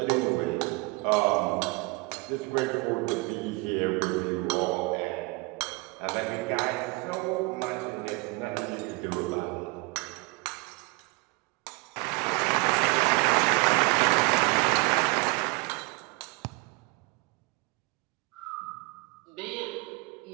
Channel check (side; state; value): left; quieter; 27.2 dB